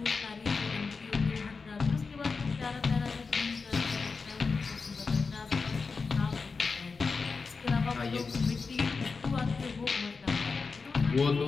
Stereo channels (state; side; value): quieter; right; 4.7 dB